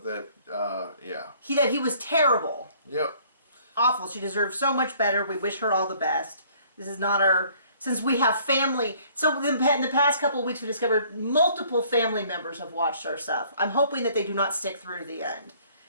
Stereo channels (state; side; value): inverted; both; correlation -0.58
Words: that, yeah. That he was terrible. Yep. Awful. She deserves so much better. We wish her all the best. This is not our... Since we have family... So in the past couple of weeks, we discovered multiple family members have watched our stuff. I'm hoping that they do not stick through to the end.